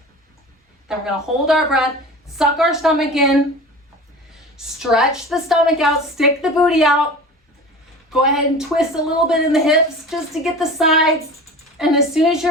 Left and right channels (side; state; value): both; normal; correlation 0.36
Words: Then we're gonna hold our breath, suck our stomach in, stretch the stomach out, stick the booty out. Go ahead and twist a little bit in the hips just to get the sides. And as soon as